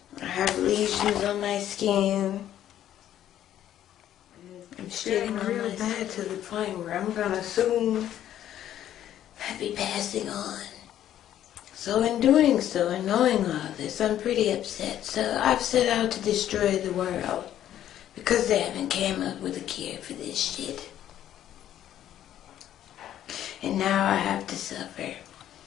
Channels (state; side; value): quieter; right; 11.5 dB